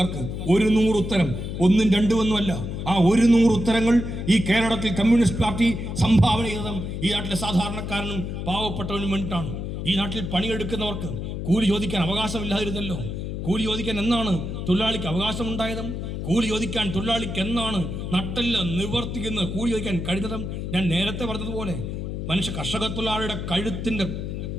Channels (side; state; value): left; noise; hum, 5 dB below the sound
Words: 100 ഉത്തരം, 1 2 ഒന്നുമല്ല. ആ 100 ഉത്തരങ്ങൾ ഈ കേരളത്തിൽ കമ്മ്യൂണിസ്റ്റ് പാർട്ടി സംഭാവന ചെയ്തതും ഈ നാട്ടിലെ സാധാരണക്കാരനും പാവപ്പെട്ടവനും വേണ്ടിയിട്ടാണ്. ഈ നാട്ടിൽ പണിയെടുക്കുന്നവർക്ക് കൂലി ചോദിക്കാൻ അവകാശമില്ലാതിരുന്നല്ലോ. കൂലി ചോദിക്കാൻ എന്നാണ് തൊഴിലാളിക്ക് അവകാശമുണ്ടായതും? കൂലി ചോദിക്കാൻ തൊഴിലാളിക്ക് എന്നാണ് നട്ടല്ല നിവർത്തിക്കുന്ന കൂലി ചോദിക്കാൻ കഴിഞ്ഞതും? ഞാൻ നേരത്തെ പറഞ്ഞതുപോലെ കർഷക തൊഴിലാളിയുടെ കഴുത്തിന്റെ